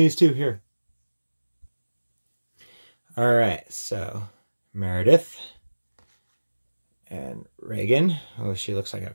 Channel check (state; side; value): inverted; both; correlation -1.00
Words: two here. All right, so Meredith and Reagan. Oh, she looks like